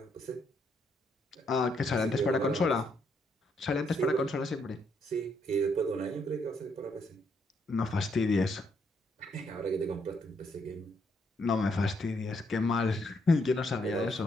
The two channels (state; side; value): normal; both; correlation 0.74